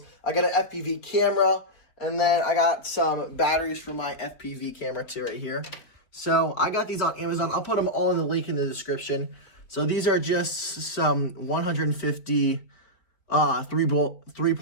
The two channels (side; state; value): right; late; 4.4 ms